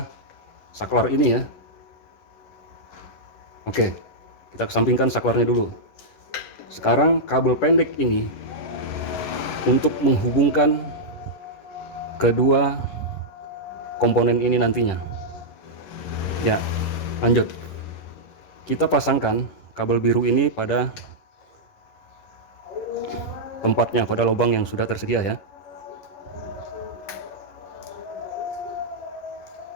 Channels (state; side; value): late; right; 10 ms